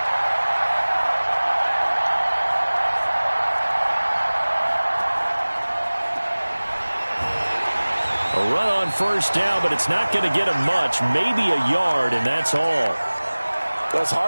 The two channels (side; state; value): both; inverted; correlation -1.00